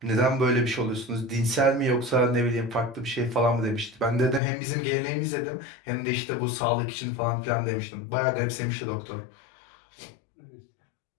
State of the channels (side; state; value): right; drops out; at 4.4 s